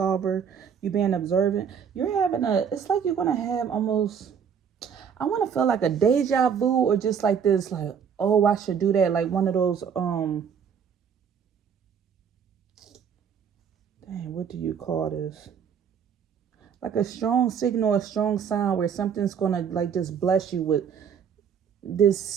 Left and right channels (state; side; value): quieter; left; 7.4 dB